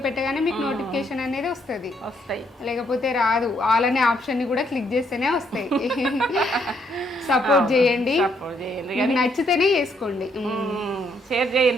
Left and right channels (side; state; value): both; normal; correlation 0.72